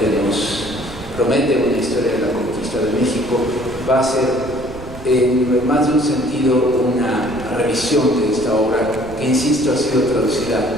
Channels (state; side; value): noise; right; rumble, 15 dB below the sound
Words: nos promete una historia de la conquista de México, va a ser en más de un sentido una revisión de esta obra, que insisto ha sido traducida